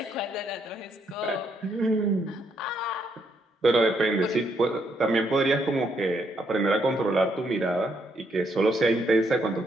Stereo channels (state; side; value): normal; both; correlation 0.74